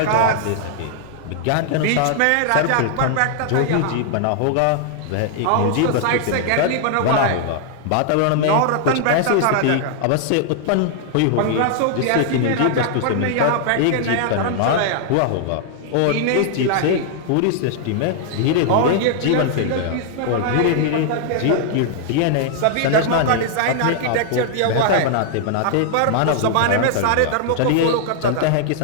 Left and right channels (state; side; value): different; both; correlation -0.01